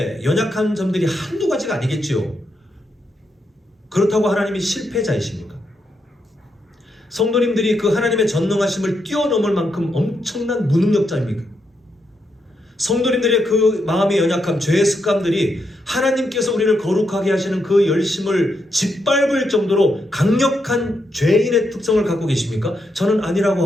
연약한 점들이 한두 가지가 아니겠지요. 그렇다고 하나님이 실패자이십니까? 성도님들이 그 하나님의 전능하심을 뛰어넘을 만큼 엄청난 무능력자입니까? 성도님들의 그 마음의 연약함, 죄의 습관들이 하나님께서 우리를 거룩하게 하시는 그 열심을 짓밟을 정도로 강력한 죄인의 특성을 갖고 계십니까? 저는 아니라고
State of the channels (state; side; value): normal; both; correlation 0.81